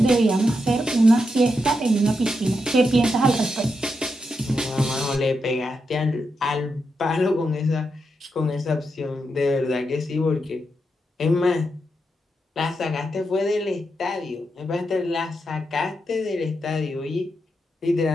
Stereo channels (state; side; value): normal; both; correlation 0.84